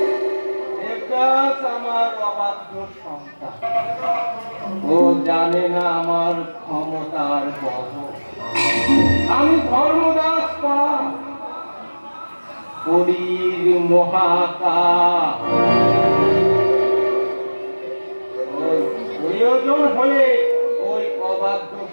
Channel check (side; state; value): both; inverted; correlation -1.00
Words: Devdas আমার অবাধ্য সন্তান। ও জানে না আমার ক্ষমতার কত। আমি ধর্মদাস পাল, কলির মহাকাল। প্রয়োজন হলে ওই অবাধ্য